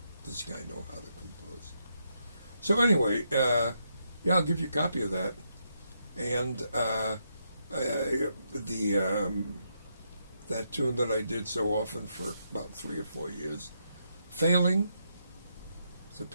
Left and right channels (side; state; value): both; inverted; correlation -0.80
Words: This guy know how to compose. So anyway, yeah, I'll give you a copy of that. And that tune that I did so often for about 3 or 4 years, Failing. It's a